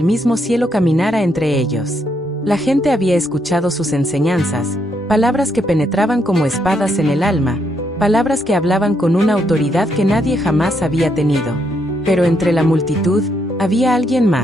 mismo cielo caminara entre ellos. La gente había escuchado sus enseñanzas, palabras que penetraban como espadas en el alma, palabras que hablaban con una autoridad que nadie jamás había tenido. Pero entre la multitud, había alguien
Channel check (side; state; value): both; normal; correlation 0.76